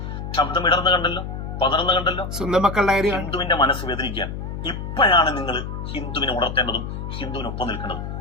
ശബ്ദം ഇടർന്ന് കണ്ടല്ലോ, പതർന്ന് കണ്ടല്ലോ. സ്വന്തം മക്കളുടെ ഹിന്ദുവിന്റെ മനസ്സ് വേദനിക്കാൻ ഇപ്പോഴാണ് നിങ്ങൾ ഹിന്ദുവിനെ ഉണർത്തേണ്ടതും ഹിന്ദുവിനൊപ്പം നിൽക്കേണ്ടതും.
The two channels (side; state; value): left; noise; hum, 6 dB below the sound